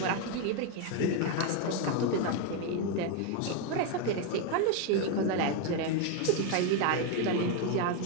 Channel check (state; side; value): different; both; correlation 0.02